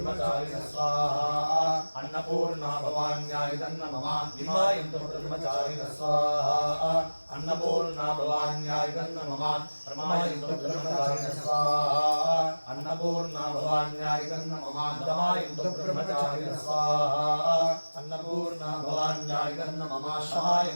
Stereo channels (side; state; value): both; inverted; correlation -1.00